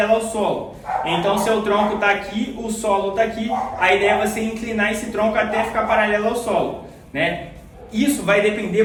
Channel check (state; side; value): identical; both; correlation 1.00